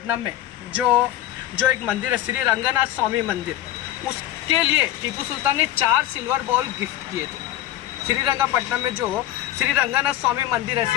में जो एक मंदिर है, श्री रंगनाथ स्वामी मंदिर, उसके लिए टीपू सुल्तान ने 4 सिल्वर बॉल गिफ्ट किए थे। श्रीरंगपट्टनम में जो श्री रंगनाथ स्वामी मंदिर है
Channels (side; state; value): right; quieter; 13.1 dB